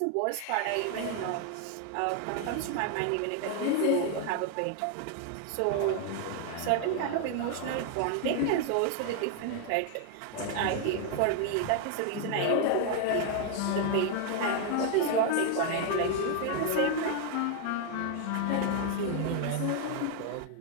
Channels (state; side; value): different; both; correlation 0.00